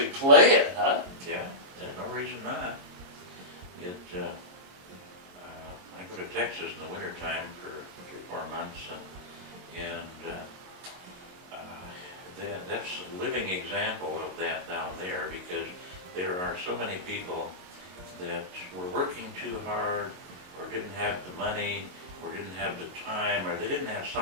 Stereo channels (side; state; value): left; late; 22 ms